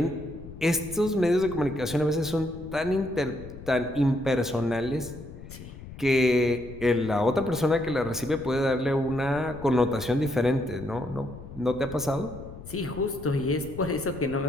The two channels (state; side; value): noise; left; rumble, 14 dB below the sound